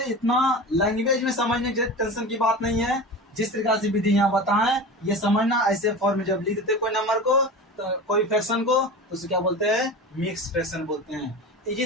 इतना लैंग्वेज में समझने की टेंशन की बात नहीं है। जिस तरीका से विधि यहाँ बताएं ये समझना। ऐसे फॉर्म में जब लिख देते कोई नंबर को, तो कोई फ्रैक्शन को, तो उसे क्या बोलते हैं? मिक्स फ्रैक्शन बोलते हैं।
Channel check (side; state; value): both; normal; correlation 0.31